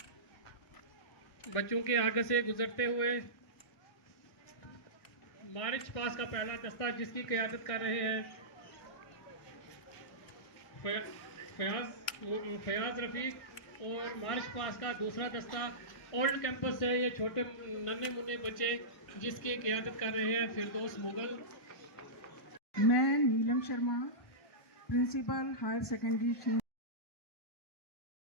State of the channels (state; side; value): late; right; 1.5 ms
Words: बच्चों के आगे से गुजरते हुए मार्च पास का पहला दस्ता जिसकी क़यादत कर रहे हैं फयाज रफीक, और मार्च पास का दूसरा दस्ता ओल्ड कैंपस से ये छोटे नन्हे मुन्ने बच्चे जिसकी क़यादत कर रहे हैं फिरदौस मुगल। मैं Neelam Sharma principal higher secondary